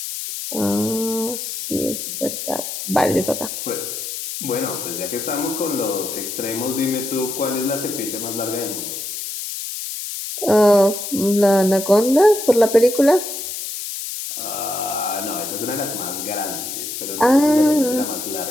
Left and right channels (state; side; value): noise; left; hiss, 6 dB below the sound